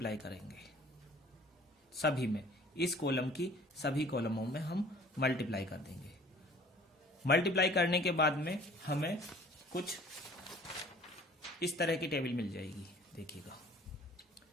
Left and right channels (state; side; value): normal; both; correlation 0.51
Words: करेंगे सभी में। इस कॉलम की सभी कॉलमों में हम मल्टीप्लाई कर देंगे। मल्टीप्लाई करने के बाद में हमें कुछ इस तरह की टेबल मिल जाएगी। देखिएगा,